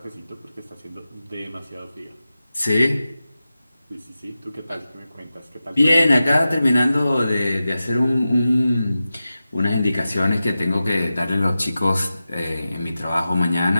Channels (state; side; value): inverted; both; correlation -0.94